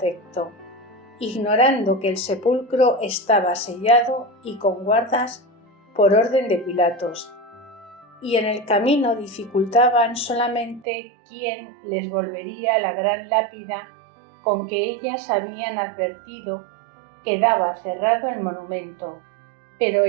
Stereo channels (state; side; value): drops out; left; at 10.9 s